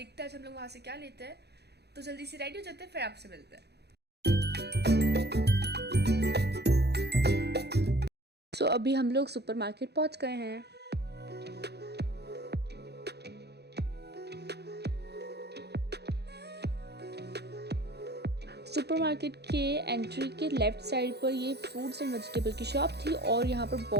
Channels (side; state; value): left; late; 0.48 ms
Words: हैं आज हम लोग वहाँ से क्या लेते हैं। तो जल्दी से रेडी हो जाते हैं, फिर आपसे मिलते हैं। सो अभी हम लोग सुपर मार्केट पहुँच गए हैं। सुपरमार्केट के एंट्री के लेफ़्ट साइड पर ये फ्रूट्स एंड वेजिटेबल की शॉप थी और यहाँ पर